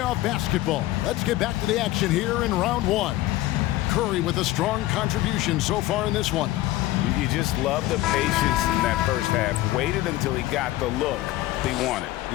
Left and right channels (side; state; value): right; quieter; 16.3 dB